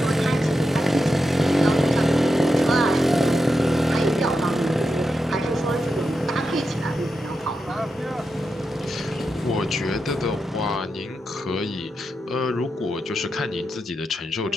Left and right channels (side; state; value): both; normal; correlation 0.87